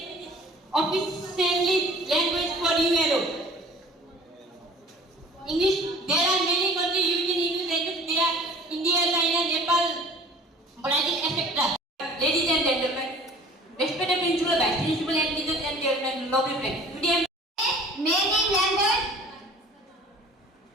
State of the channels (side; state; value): both; normal; correlation 0.48